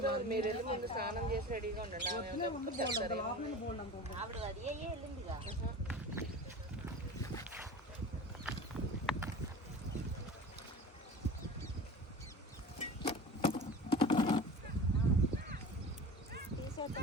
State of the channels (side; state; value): both; normal; correlation 0.36